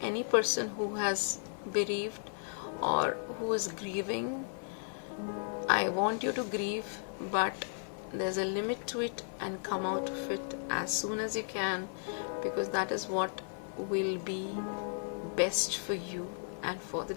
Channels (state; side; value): silent; right; 55 dB below the other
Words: any person who has bereaved or who is grieving, I want you to grieve, but there's a limit to it, and come out of it as soon as you can, because that is what will be best for you and for the